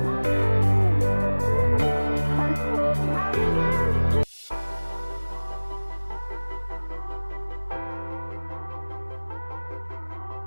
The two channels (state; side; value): inverted; both; correlation -1.00